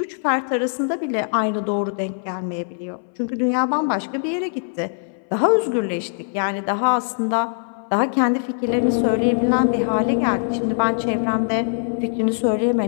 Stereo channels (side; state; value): right; silent; 61 dB below the other